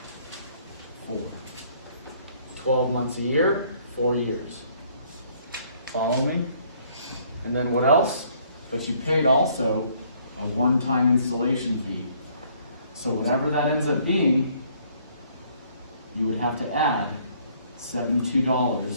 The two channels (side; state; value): both; inverted; correlation -0.63